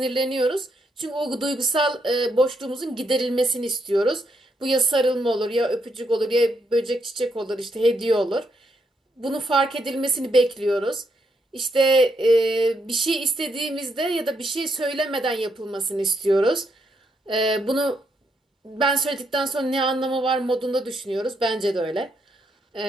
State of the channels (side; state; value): both; normal; correlation 0.77